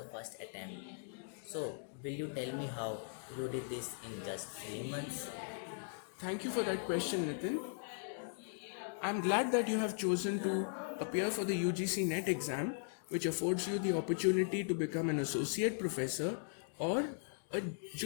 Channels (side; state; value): right; silent; digital silence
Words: first attempt. So, will you tell me how you did this in just 3 months? Thank you for that question, Nitin. I'm glad that you have chosen to appear for the UGC NET exam, which affords you the opportunity to become an associate professor or a